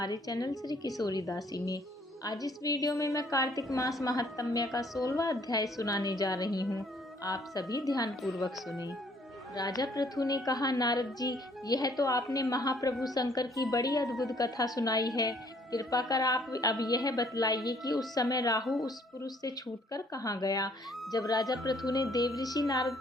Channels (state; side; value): normal; both; correlation 0.62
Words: चैनल श्री किशोरी दासी में। आज इस वीडियो में मैं कार्तिक मास महात्म्य का 16वां अध्याय सुनाने जा रही हूँ। आप सभी ध्यान पूर्वक सुने। राजा पृथु ने कहा, नारद जी, यह तो आपने महाप्रभु शंकर की बड़ी अद्भुत कथा सुनाई है। कृपा कर आप अब यह बतलाइए कि उस समय राहु उस पुरुष से छूटकर कहाँ गया। जब राजा पृथु ने देवऋषि नारद